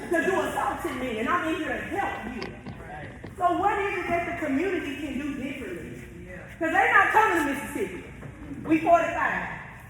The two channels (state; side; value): identical; both; correlation 1.00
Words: Because you assaulted me, and I'm in here to help you. So what is it that the community can do differently? Because they're not coming to Mississippi. We 45.